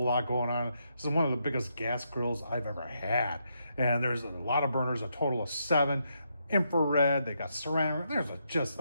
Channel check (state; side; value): inverted; both; correlation -0.79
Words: going on. This is one of the biggest gas grills I've ever had, and there's a lot of burners, a total of 7. Infrared, they got ceramic.